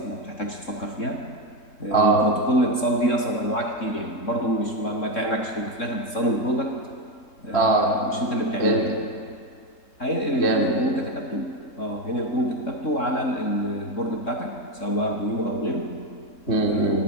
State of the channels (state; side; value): late; right; 3.7 ms